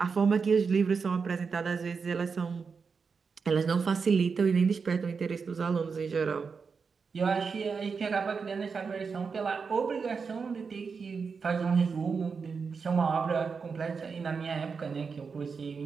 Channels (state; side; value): quieter; left; 5.4 dB